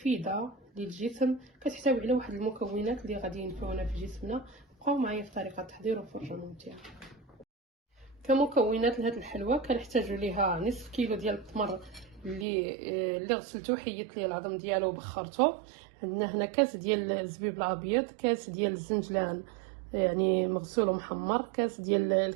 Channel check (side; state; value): left; drops out; at 12.5 s